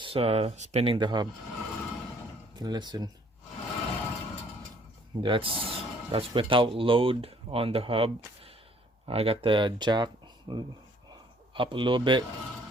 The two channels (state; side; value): normal; both; correlation 0.60